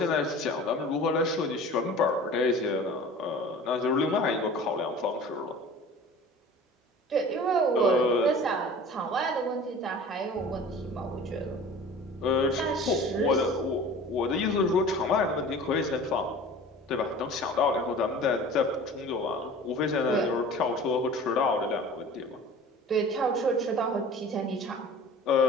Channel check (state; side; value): normal; both; correlation 0.41